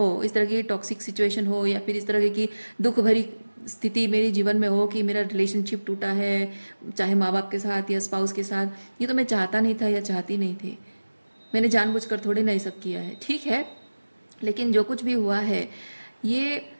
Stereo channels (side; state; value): both; inverted; correlation -1.00